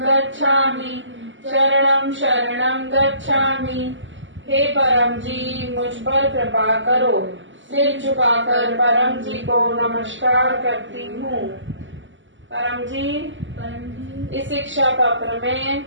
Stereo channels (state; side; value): late; left; 0.55 ms